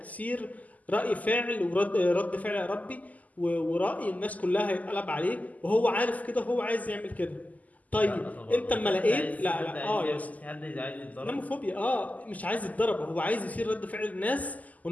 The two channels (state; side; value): late; right; 0.077 ms